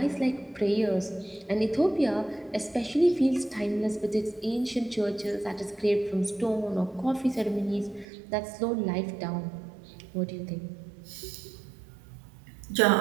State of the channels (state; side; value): drops out; left; at 8.1 s